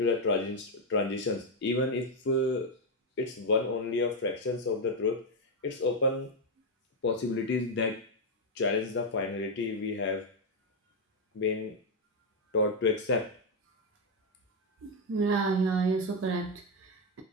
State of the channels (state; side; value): normal; both; correlation 0.03